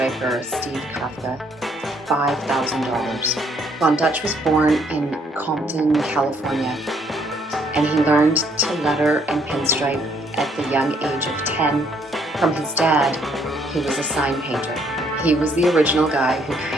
Steve Kafka, $5,000. Von Dutch was born in Compton, California, and he learned to letter and pinstripe at the young age of 10 from his dad, who was a sign painter. He was the original guy who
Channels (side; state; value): both; normal; correlation 0.67